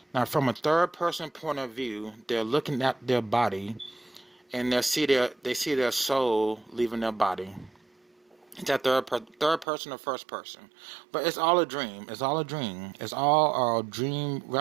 Now, from a third person point of view, they're looking at their body, and they see their soul leaving their body. It's that third person or first person, but it's all a dream. It's all a dream. It's all a dream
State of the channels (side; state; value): left; drops out; at 9.7 s